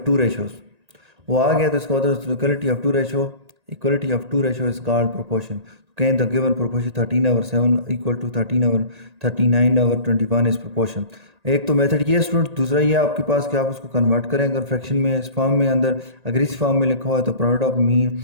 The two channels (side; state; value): left; late; 1.8 ms